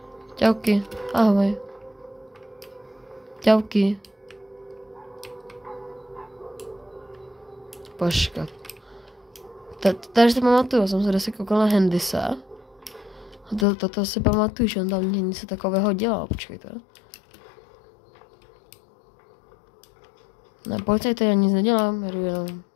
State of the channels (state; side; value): drops out; right; at 13.7 s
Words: Čauky. Ahoj. Čauky. Počkat. Tady si pamatuju, jsem se dosti koukal na Hendyse. To si pamatuju, že on tam něco takového dělal, počkejte. Ne, policajte, já nic nedělám, jdu jenom